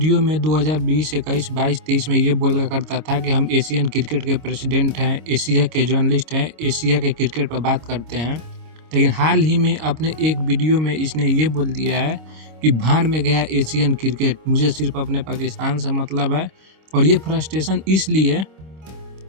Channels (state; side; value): late; left; 26 ms